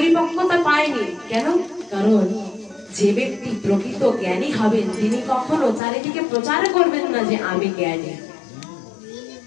পায়নি, কেন? কারণ যে ব্যক্তি প্রকৃত জ্ঞানী হবেন তিনি কখনো চারিদিকে প্রচার করবেন না যে আমি জ্ঞানী।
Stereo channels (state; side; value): drops out; right; at 5.8 s